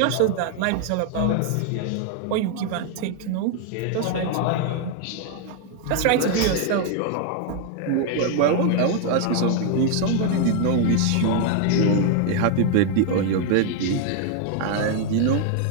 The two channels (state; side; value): different; both; correlation 0.00